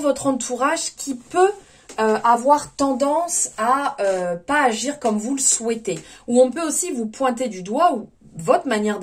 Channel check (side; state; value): both; identical; correlation 1.00